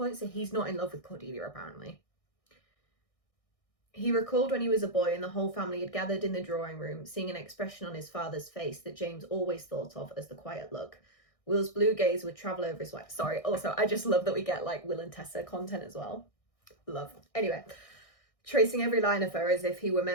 so he's not in love with Cordelia, apparently. He recalled when he was a boy and the whole family had gathered in the drawing room, seeing an expression on his father's face that James always thought of as the quiet look. Will's blue gaze would travel over his wife. Sorry, also, I just love that we get, like, Will and Tessa content as well. Love. Anyway, tracing every line of her as if he were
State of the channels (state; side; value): late; right; 1.6 ms